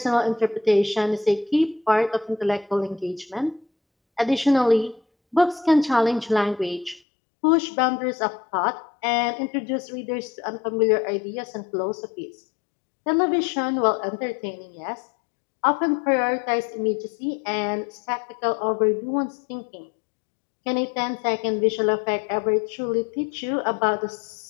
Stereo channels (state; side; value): drops out; right; at 7.0 s